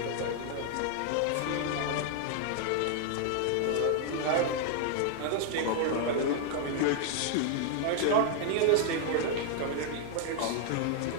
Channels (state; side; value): different; both; correlation 0.00